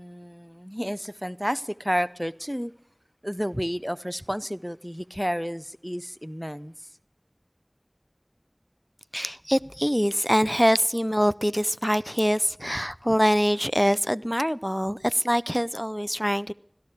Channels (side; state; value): both; identical; correlation 1.00